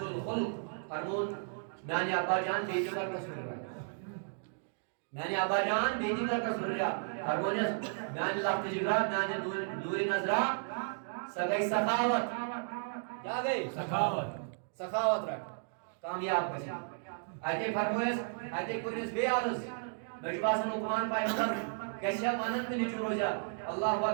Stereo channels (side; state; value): left; silent; digital silence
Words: الخلق فرمون میانی ابا جان بیٹی کر تصور رہا میانی ابا جان بیٹی کر تصور رہا فرمونیس میانی لفت جگرہ میانی نور نظرہ سگئی سخاوت کیا گئی سخاوت رکھ کامیاب کسی آئیتے فرمویس آئیتے کرنیس بے عرض مجباس لقمان پیغمبر کیسیا مانت میں نچو رو جا اللہ